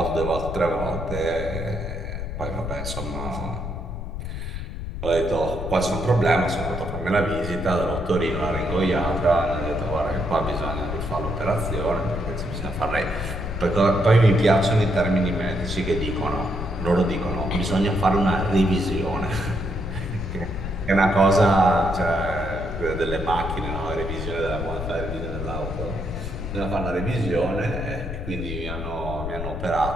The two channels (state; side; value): noise; left; rumble, 6 dB below the sound